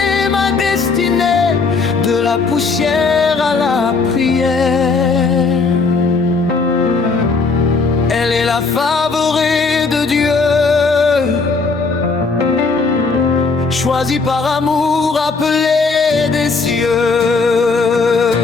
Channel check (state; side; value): quieter; right; 4.3 dB